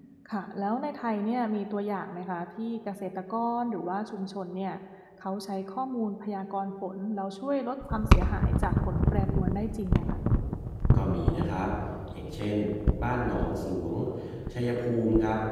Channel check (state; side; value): identical; both; correlation 1.00